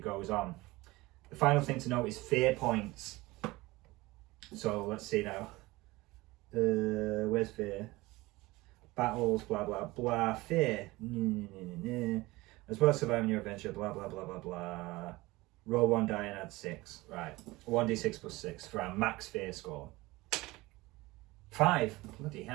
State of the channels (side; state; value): left; quieter; 20.7 dB